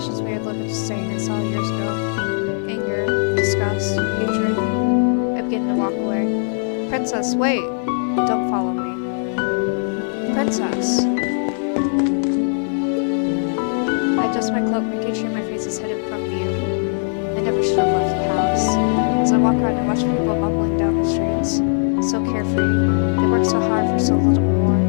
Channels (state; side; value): silent; right; digital silence